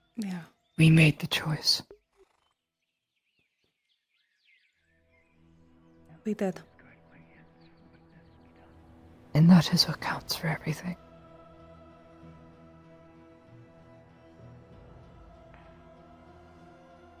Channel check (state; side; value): identical; both; correlation 1.00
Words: Yeah. We made the choice. We did. And that is what counts for everything.